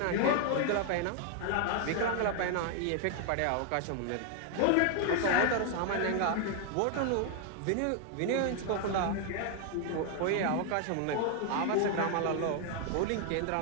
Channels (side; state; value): both; different; correlation 0.00